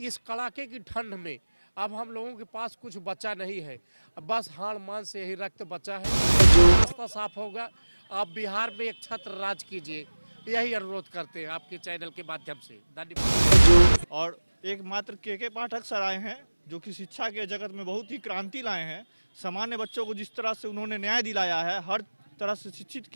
कड़ाके की ठंड में अब हम लोगों के पास कुछ बचा नहीं है, बस हाड़ मांस से यही रक्त बचा है। रास्ता साफ होगा, आप बिहार में एक छत्र राज कीजिए, यही अनुरोध करते हैं आपके चैनल के माध्यम से। धन्यवाद। और एकमात्र के पाठक सर आए हैं जो कि शिक्षा के जगत में बहुत ही क्रांति लाए हैं। सामान्य बच्चों को जिस तरह से उन्होंने न्याय दिलाया है, हर तरह से शिक्षित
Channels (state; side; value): inverted; both; correlation -1.00